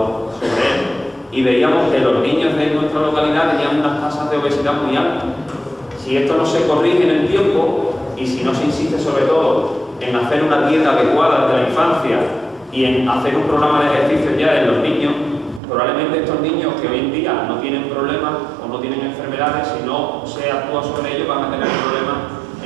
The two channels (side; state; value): left; drops out; at 15.6 s